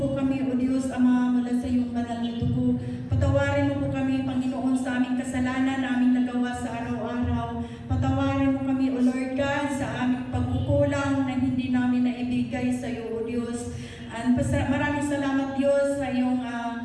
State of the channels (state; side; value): identical; both; correlation 1.00